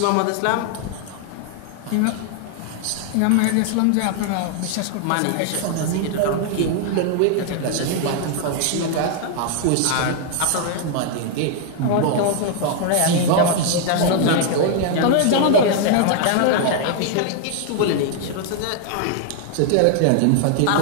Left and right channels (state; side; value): different; both; correlation 0.00